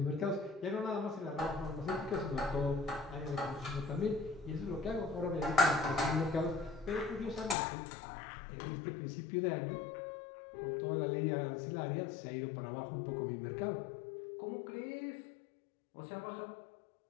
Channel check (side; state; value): right; drops out; at 7.6 s